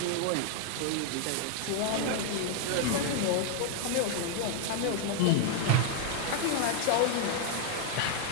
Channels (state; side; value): different; both; correlation 0.00